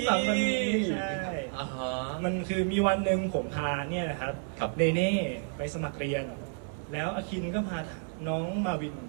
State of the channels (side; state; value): left; silent; 57 dB below the other